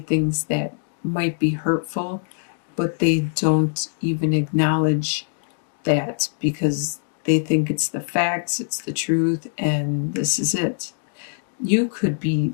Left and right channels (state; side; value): silent; right; digital silence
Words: that might be hurtful, but they don't even acknowledge that because they think it's the facts, it's the truth, and this is it. You could be